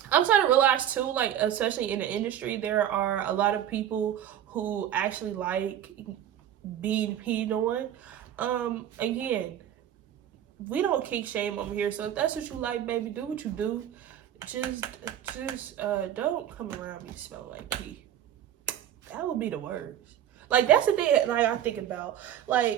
I'm starting to realize too, like, especially in the industry, there are a lot of people who actually like being peed on. Again, we don't kink shame over here, so if that's what you like, baby, do what you do. Just don't come around me smelling like pee. That would be the worst. Like, that's the thing that, like, I think about,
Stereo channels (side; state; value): left; quieter; 10.6 dB